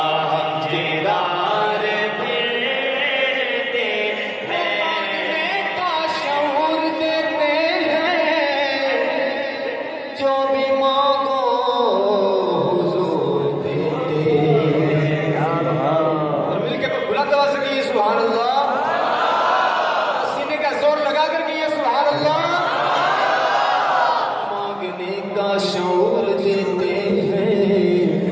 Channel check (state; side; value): identical; both; correlation 1.00